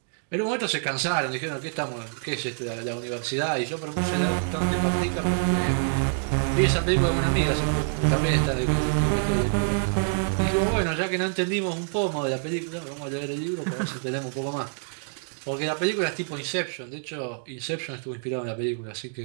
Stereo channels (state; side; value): silent; left; digital silence